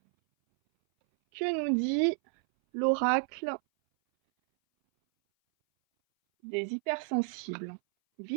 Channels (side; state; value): left; silent; 57 dB below the other